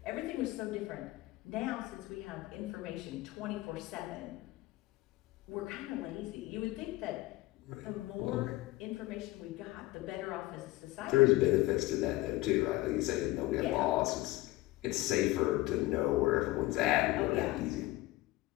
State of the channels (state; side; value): quieter; right; 18.7 dB